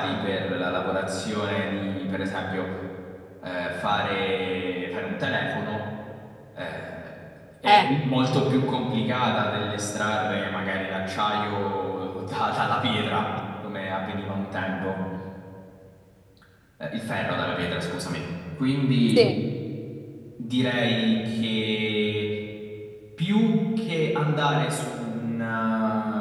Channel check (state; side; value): identical; both; correlation 1.00